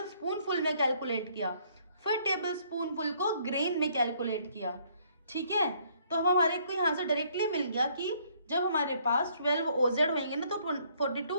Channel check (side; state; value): both; inverted; correlation -0.65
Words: स्पून फुल में कैलकुलेट किया, फिर टेबल स्पून फुल को ग्रेन में कैलकुलेट किया। ठीक है, तो हम हमारे को यहाँ से डायरेक्टली मिल गया कि जब हमारे पास 12 ओजेड होंगे ना तो